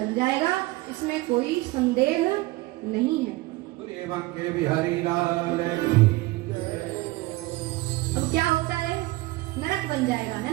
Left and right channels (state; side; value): quieter; left; 20.1 dB